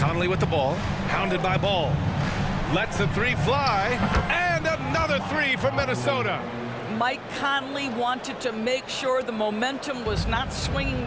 with the ball. Hounded by Ball. Lets the 3 fly. And another 3 from Minnesota. Mike Conley wanted to make sure the momentum was not swinging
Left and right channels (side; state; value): both; identical; correlation 1.00